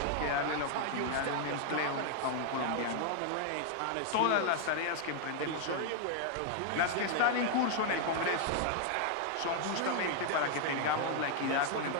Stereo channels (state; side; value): different; both; correlation 0.00